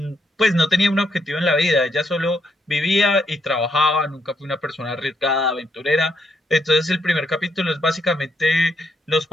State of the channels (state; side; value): normal; both; correlation 0.76